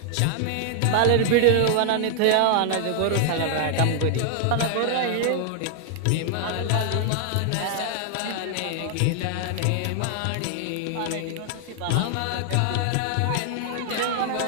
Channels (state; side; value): different; both; correlation 0.00